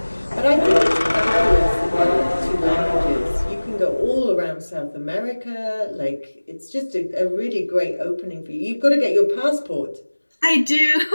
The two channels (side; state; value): both; inverted; correlation -1.00